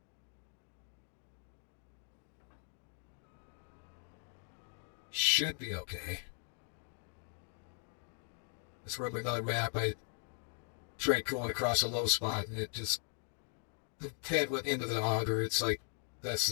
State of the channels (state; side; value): silent; right; 52 dB below the other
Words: Should be okay. Let's remember another map. I tried going across a low spot and it just the head went into the auger. It's like